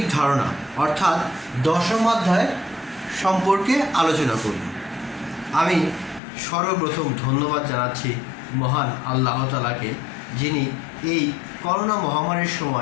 ধারণা অর্থাৎ 10ম অধ্যায় সম্পর্কে আলোচনা করব। আমি সর্বপ্রথম ধন্যবাদ জানাচ্ছি মহান আল্লাহ তাআলাকে, যিনি এই করোনা মহামারীর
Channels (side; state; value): right; drops out; at 6.2 s